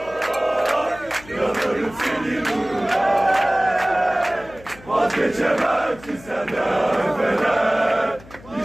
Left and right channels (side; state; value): left; noise; hum, 21 dB below the sound